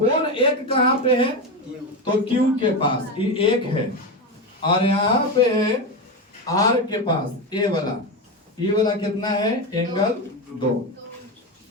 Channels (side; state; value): both; normal; correlation 0.16